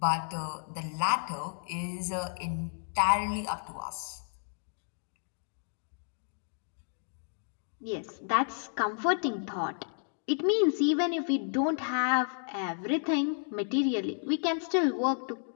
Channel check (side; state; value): right; silent; digital silence